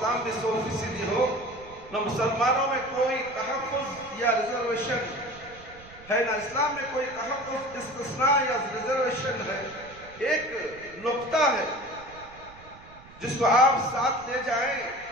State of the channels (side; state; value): right; noise; rumble, 21 dB below the sound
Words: بھی 100% ہو، نہ مسلمانوں میں کوئی تحفظ یا ریزرویشن ہے، نہ اسلام میں کوئی تحفظ، استثناء یا ریزرویشن ہے۔ ایک نقطہ ہے جس کو آپ ساتھ لے جائیں